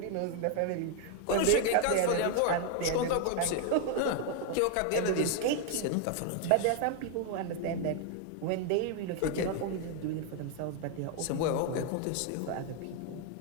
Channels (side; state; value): both; different; correlation 0.00